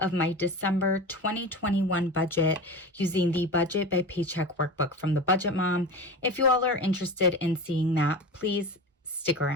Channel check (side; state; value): both; normal; correlation 0.29